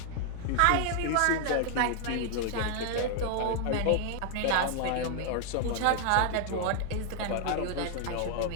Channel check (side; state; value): both; different; correlation 0.00